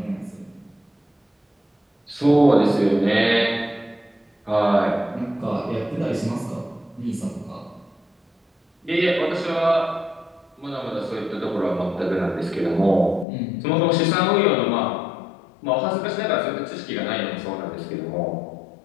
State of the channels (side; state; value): right; drops out; at 13.2 s